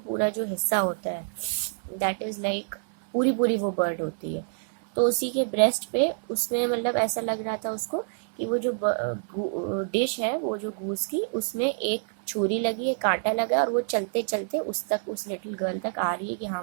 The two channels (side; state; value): left; silent; 60 dB below the other